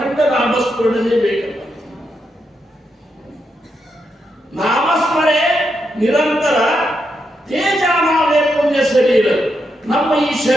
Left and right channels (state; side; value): normal; both; correlation 0.83